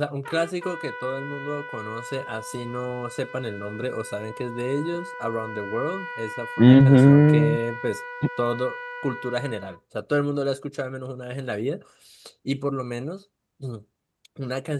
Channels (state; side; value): identical; both; correlation 1.00